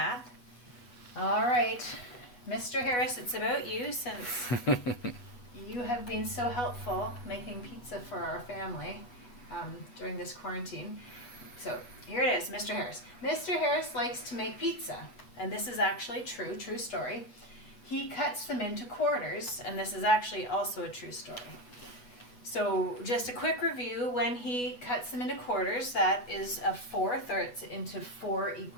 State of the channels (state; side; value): late; right; 8.2 ms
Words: All right, Mr. Harris, it's about you since you have been so helpful making pizza for our family during this quarantine. So here it is, Mr. Harris. Mr. Harris likes to make pizza, and this is actually true story. He cuts them into quarters, and this is actually also a true story. So just a quick review, when he cuts them into quarters, that is a fourth, or it's into 4